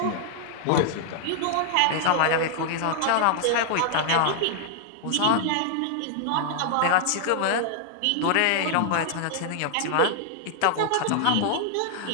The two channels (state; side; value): different; both; correlation -0.01